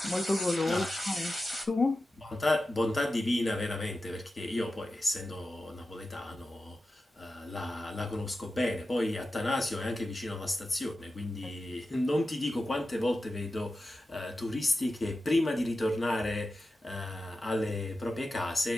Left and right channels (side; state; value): both; normal; correlation 0.92